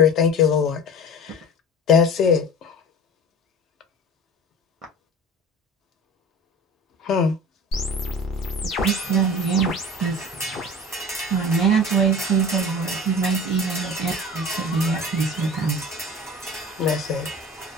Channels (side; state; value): both; normal; correlation 0.38